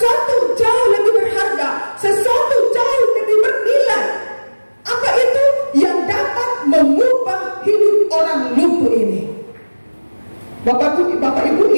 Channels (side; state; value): both; inverted; correlation -1.00